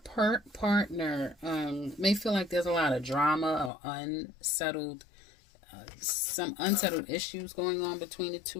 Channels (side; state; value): right; drops out; at 3.7 s